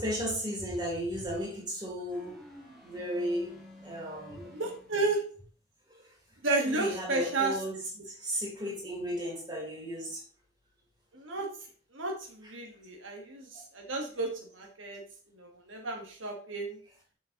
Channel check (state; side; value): normal; both; correlation 0.20